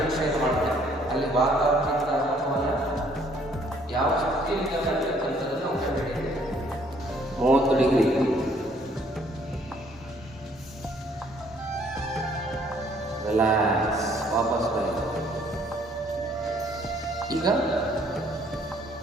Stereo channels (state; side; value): normal; both; correlation 0.63